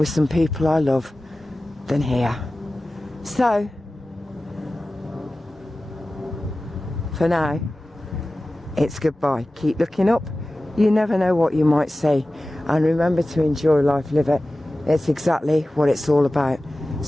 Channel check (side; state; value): both; normal; correlation 0.96